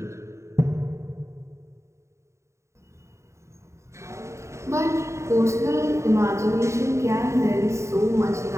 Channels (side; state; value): left; late; 0.14 ms